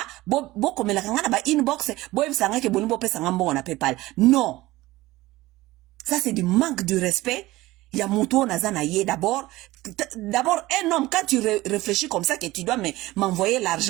bo komela kanga ba inbox bo ebisanga ke boni bo pesa ngambo na PayPal. Non. Ça c'est du manque de respect. Ya muto naza na ye d'abord un homme quand tu réfléchis comme ça que tu dois m'envoyer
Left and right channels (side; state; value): left; quieter; 18.4 dB